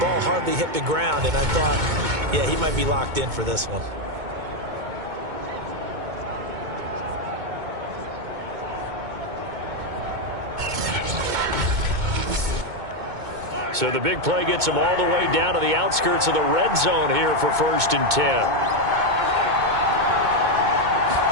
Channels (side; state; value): left; late; 2.2 ms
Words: hardly hit the ground, and I thought, yeah, he might be locked in for this one. So the big play gets him all the way down to the outskirts of the red zone here for 1st and 10.